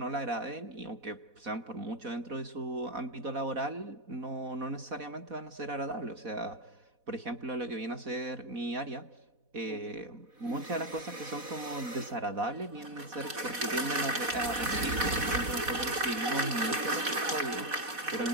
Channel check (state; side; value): late; left; 4.1 ms